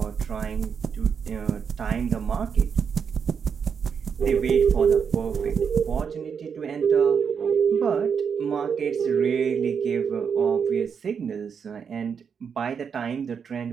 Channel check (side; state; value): left; quieter; 6.7 dB